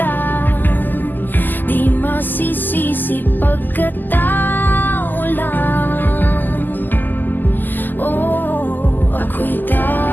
Di masisisi pagkatao lang. Oh, ako'y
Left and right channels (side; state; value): right; late; 0.088 ms